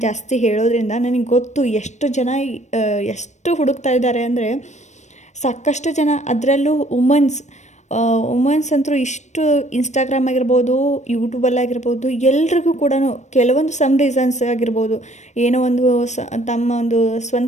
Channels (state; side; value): late; right; 0.34 ms